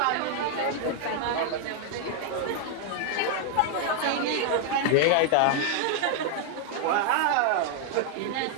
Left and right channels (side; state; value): both; different; correlation 0.00